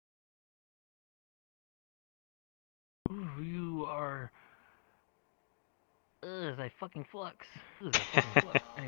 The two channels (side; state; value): right; silent; digital silence